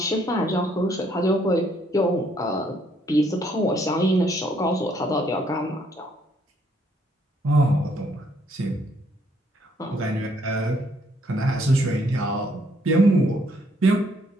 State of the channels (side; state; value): both; normal; correlation 0.68